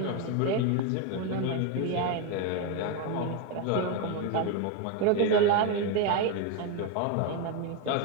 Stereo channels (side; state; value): both; different; correlation 0.02